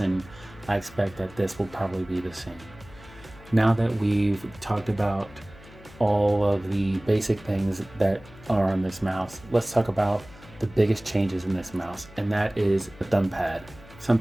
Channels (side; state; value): left; noise; hum, 21 dB below the sound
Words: I expect that this will probably be the same. Now that we've talked about all of the basic things that are on this mouse, let's talk about the biggest changes in this mouse, and that is the thumb pad.